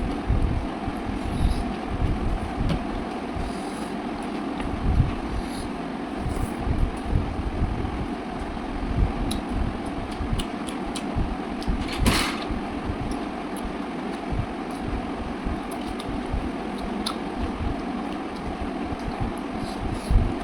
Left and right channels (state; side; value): identical; both; correlation 1.00